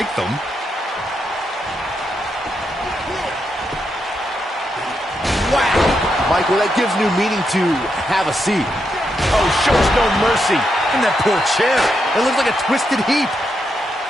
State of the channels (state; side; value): normal; both; correlation 0.82